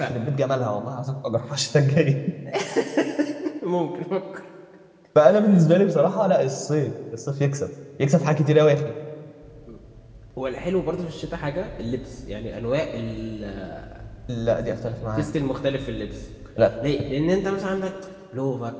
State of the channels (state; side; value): identical; both; correlation 1.00